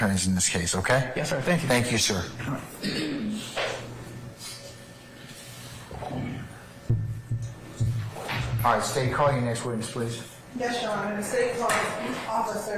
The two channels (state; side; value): identical; both; correlation 1.00